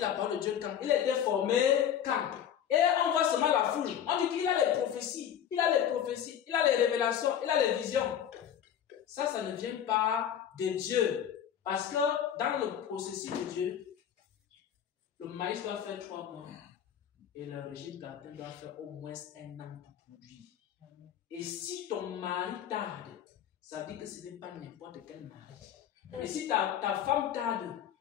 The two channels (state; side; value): quieter; right; 9.5 dB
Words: parole de Dieu quand? Il a été formé quand? Et on voit seulement la foule. On dit qu'il a les prophéties. Il a les prophéties. Il a les révélations. Il a les visions. Ça ne vient pas de Dieu. Parce que dans le processus de Dieu, le maïs doit faire 3 mois. Et le régime plantain doit faire au moins 1 an pour produire. Et si ton mari tarde, ça veut dire que ce n'est pas n'importe quel mari. Et si ta femme tarde,